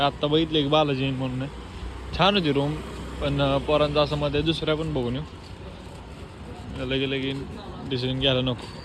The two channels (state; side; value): identical; both; correlation 1.00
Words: आत्ता बघितले एक बालाजी म्हणून छान होती रूम, पण पोरांचा असं मध्ये दुसऱ्या पण बघून येऊ. लगे लगे डिसिजन घ्यायला नको.